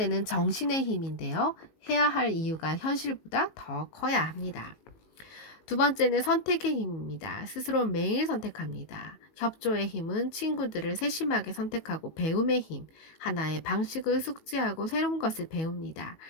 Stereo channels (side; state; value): right; late; 19 ms